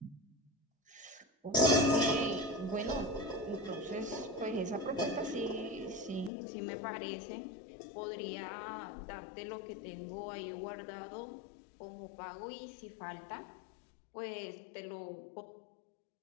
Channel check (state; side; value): drops out; right; at 6.3 s